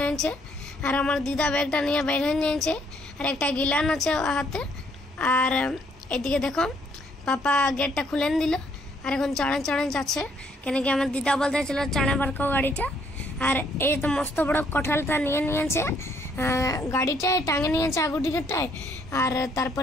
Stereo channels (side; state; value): both; normal; correlation 0.68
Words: और हमार दीदा बैगटा নিয়ে বের হয়ে যাচ্ছে और একটা গিলান আছে হাতে और এদিকে দেখো पापा गेटटा खुले दिल और এখন চড়ে চড়ে যাচ্ছে কেন কি আমার दीदा বলতেছিল চড়ে বারকো গাড়িটা और ये तो मस्त बड़ा कठालटा निये नियेछे गाड़ीटाय टांगे नियेछे आगु टिकेटटाय और